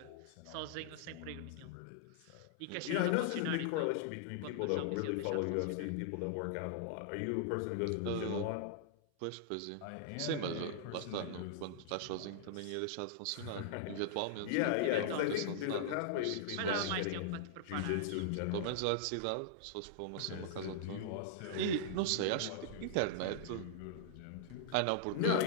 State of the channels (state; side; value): different; both; correlation -0.01